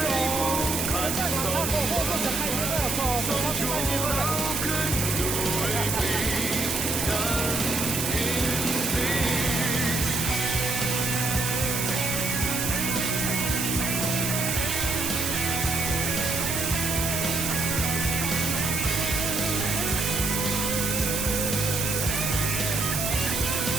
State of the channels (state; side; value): noise; right; hiss, 1 dB below the sound